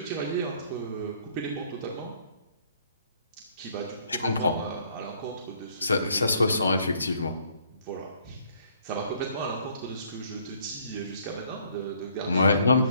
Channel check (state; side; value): inverted; both; correlation -0.64